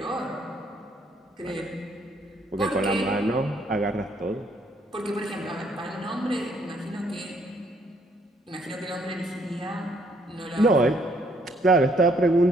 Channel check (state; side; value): normal; both; correlation 0.68